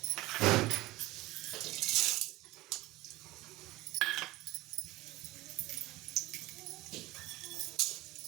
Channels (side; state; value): left; quieter; 19.2 dB